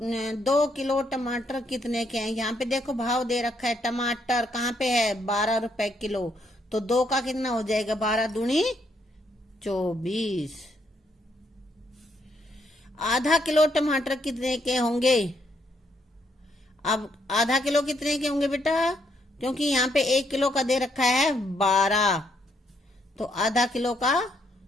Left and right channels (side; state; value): both; normal; correlation 0.74